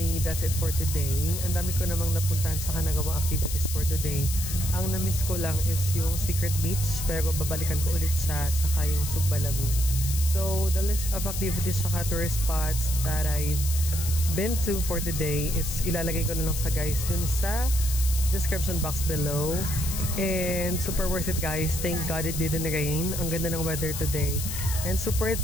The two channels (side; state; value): left; noise; hiss, 6 dB below the sound